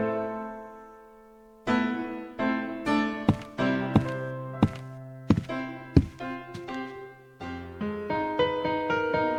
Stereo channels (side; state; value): both; identical; correlation 1.00